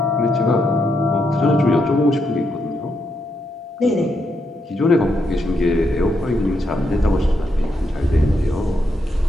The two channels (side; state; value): both; normal; correlation 0.80